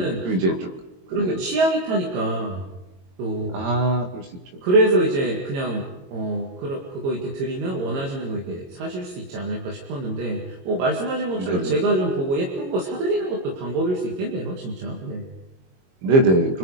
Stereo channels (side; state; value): left; late; 22 ms